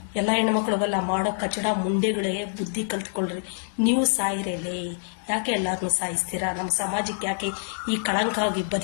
ಎಲ್ಲ ಹೆಣ್ಮಕ್ಳುಗೆಲ್ಲ ಮಾಡೋ ಕಚಡ ಮುಂಡೆಗಳೇ ಬುದ್ಧಿ ಕಲ್ತ್ಕೊಳ್ರಿ. ನೀವು ಸಾಯಿರೇಲೇ, ಯಾಕೆ ಎಲ್ಲಾರನ್ನೂ ಸಾಯಿಸ್ತೀರಾ? ನಮ್ಮ ಸಮಾಜಕ್ಕೆ ಯಾಕೆ ಈ ಕಳಂಕ ಆಗಿ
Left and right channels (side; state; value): right; silent; digital silence